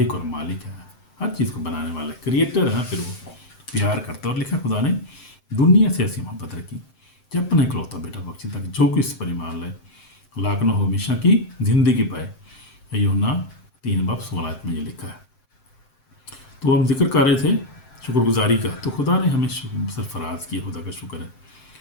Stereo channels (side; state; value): right; late; 7.7 ms